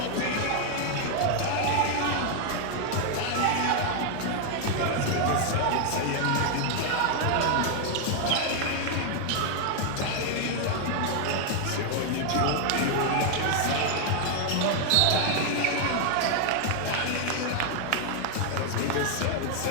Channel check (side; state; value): both; different; correlation 0.00